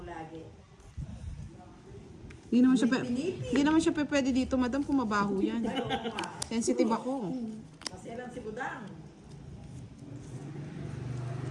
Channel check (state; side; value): identical; both; correlation 1.00